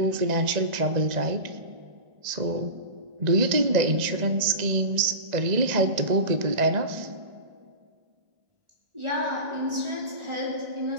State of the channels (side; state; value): left; late; 1.9 ms